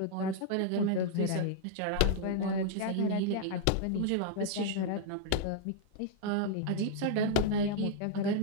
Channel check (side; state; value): both; different; correlation -0.01